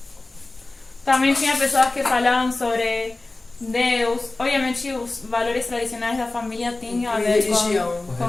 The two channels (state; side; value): quieter; right; 3.1 dB